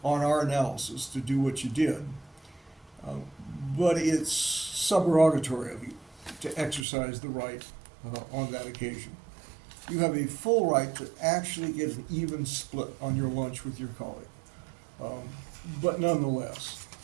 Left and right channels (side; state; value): left; drops out; at 6.9 s